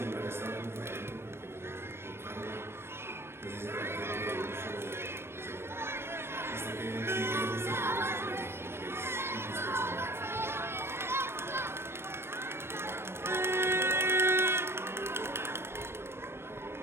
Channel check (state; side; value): late; left; 0.12 ms